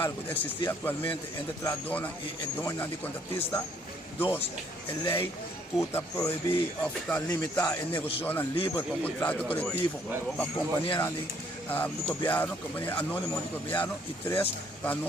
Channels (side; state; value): both; normal; correlation 0.65